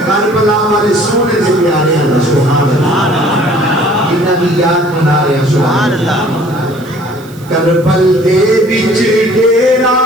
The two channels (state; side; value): noise; right; hiss, 24 dB below the sound